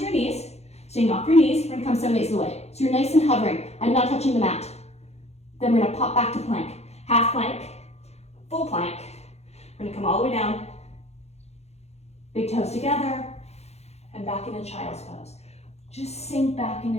knees. Staying off your knees, we're going to come 7/8 of the way. So you're nice and hovering. I'm not touching the mat. Then we're going to pop back to plank. Half plank, full plank. We're going to come all the way down. Big toes together. And back into child's pose. Just sink back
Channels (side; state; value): right; late; 0.31 ms